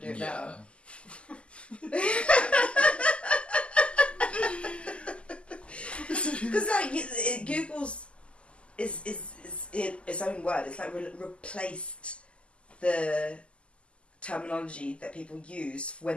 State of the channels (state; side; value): late; right; 0.054 ms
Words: do it now. Because Google's is its own word. It's replaced the terminology that people use